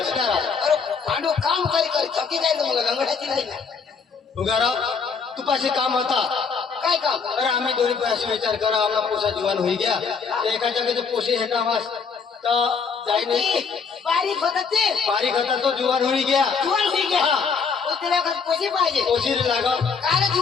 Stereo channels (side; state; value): right; quieter; 5.6 dB